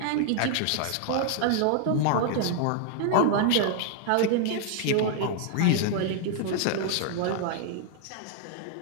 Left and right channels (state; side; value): different; both; correlation 0.00